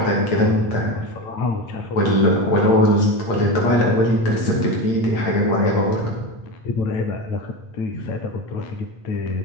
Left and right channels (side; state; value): right; late; 8.7 ms